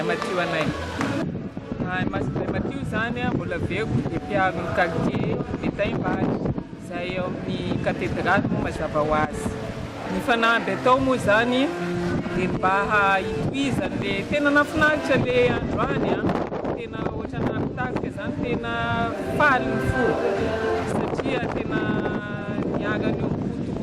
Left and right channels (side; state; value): both; identical; correlation 1.00